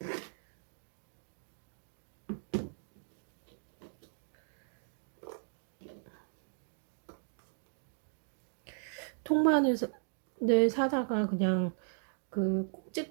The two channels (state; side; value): silent; left; digital silence